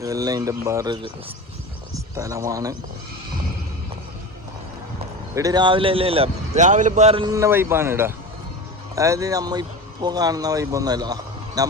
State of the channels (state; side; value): normal; both; correlation 0.28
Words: ഇതെല്ലാം ഇതിൻ്റെ വേറൊരു സ്ഥലമാണ്. ഇവിടെ രാവിലെ രാവിലെ വേറെ വൈബാണ് ഇവിടെ. അതായത് നമ്മ ഇപ്പോൾ കാണുന്ന വൈബൊന്നുമല്ല. ഞാൻ